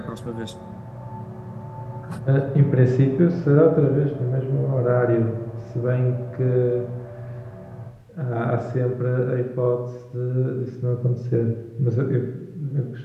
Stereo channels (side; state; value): both; identical; correlation 1.00